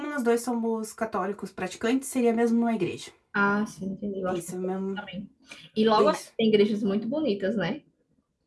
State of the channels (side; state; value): both; identical; correlation 1.00